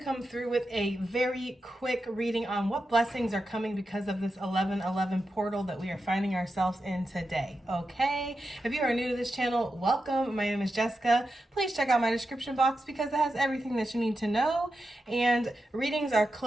come through with a very quick reading on what blessings are coming because of this 1111 portal that we are finding ourselves in today. Okay, if you are new to this channel, welcome. My name is Jessica. Please check out my description box because it has everything that you need to know. And readings are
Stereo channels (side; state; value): both; normal; correlation 0.89